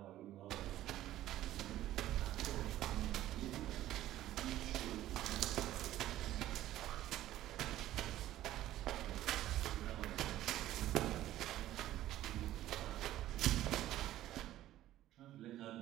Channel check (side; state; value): left; quieter; 13.9 dB